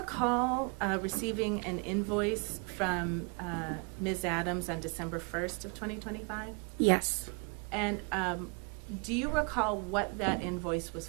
receiving an invoice from Ms. Adams on December 1st of 2025? Yes. And do you recall what that invoice was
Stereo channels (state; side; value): quieter; left; 34.5 dB